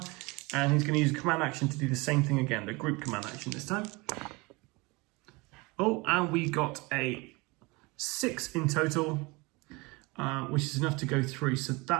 And he's going to use a command action to do the same thing again, the group command action this time. Oh, and we got a 6 in total, which is enough to go through. So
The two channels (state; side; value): quieter; left; 25.5 dB